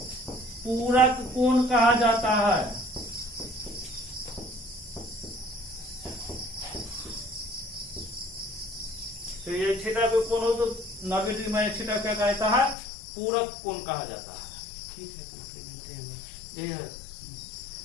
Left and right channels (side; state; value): right; drops out; at 12.8 s